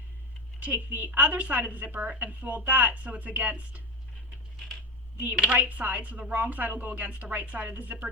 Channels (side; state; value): both; normal; correlation 0.20